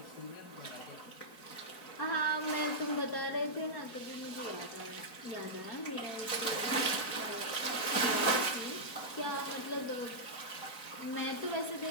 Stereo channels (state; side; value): late; right; 4.7 ms